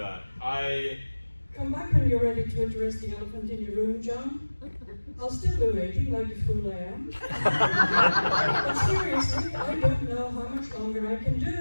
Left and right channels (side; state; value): both; inverted; correlation -1.00